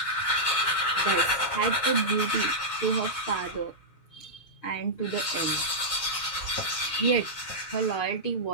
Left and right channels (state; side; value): late; right; 6.6 ms